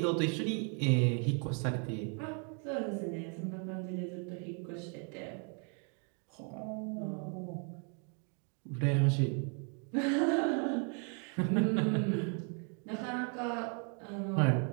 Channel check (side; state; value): left; quieter; 39.5 dB